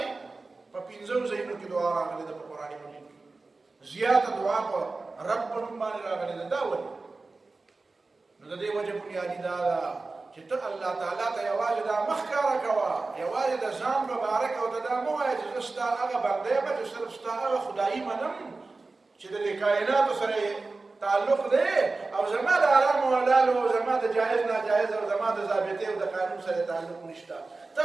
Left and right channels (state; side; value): quieter; left; 3.6 dB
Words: په پنځو ځایونو کې دعا راغلې ده په قرآن مجید کې زیاته دعا په رب په نوم باندې راغلې ده دا ولې نو د دې وجه بنیادي دا ده چې ته الله تعالی ته یوازې دا مخ ښکاره کوه یوازې د ځان مبارک او ته دا مه وایه چې زه ستا هغه بنده یم چې صرف ستا هغه خدایي منم چې د دې کائناتو سره تعلق دی او زما د حرام او حلال او زما د جایز ناجایز او زما د ضابطې او د قانون سره تعلق نشته ته